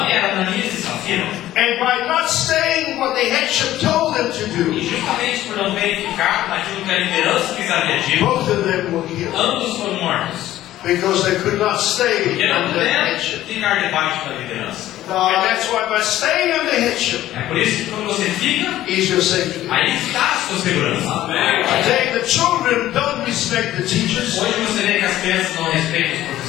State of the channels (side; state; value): right; quieter; 14.0 dB